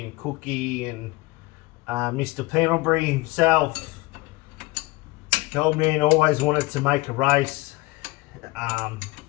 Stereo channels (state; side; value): quieter; right; 22.2 dB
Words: and Cookie and Mr. Pendlebury himself, the old man always wanted to make a race,